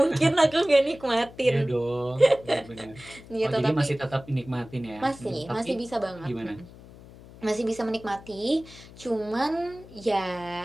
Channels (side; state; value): left; noise; hum, 19 dB below the sound